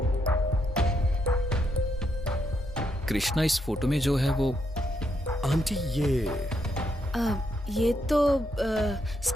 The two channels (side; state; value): both; normal; correlation 0.78